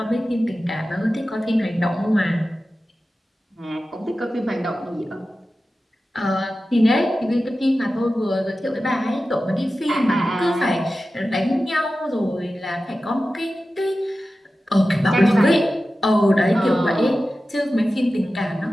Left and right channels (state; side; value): normal; both; correlation 0.94